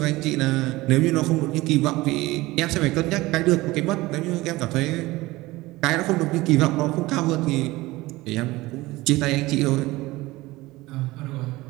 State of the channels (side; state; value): left; quieter; 19.7 dB